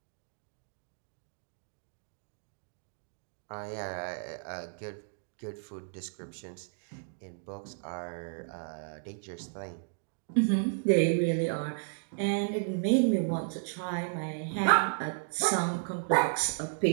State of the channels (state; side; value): silent; left; digital silence